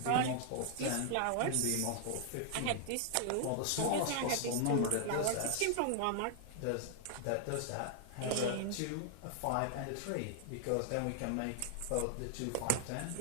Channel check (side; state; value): both; different; correlation 0.00